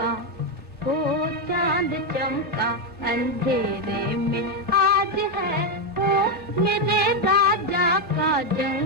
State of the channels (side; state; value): right; late; 1.3 ms